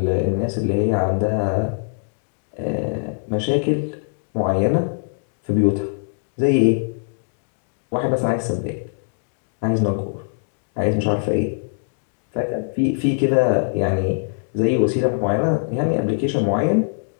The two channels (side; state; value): right; silent; digital silence